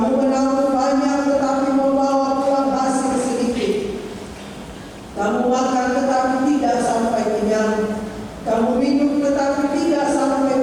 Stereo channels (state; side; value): identical; both; correlation 1.00